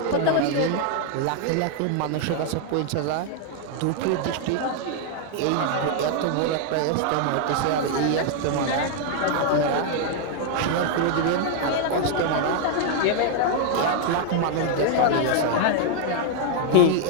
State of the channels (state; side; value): different; both; correlation 0.00